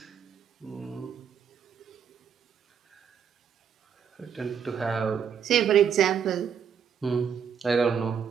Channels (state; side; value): quieter; left; 7.5 dB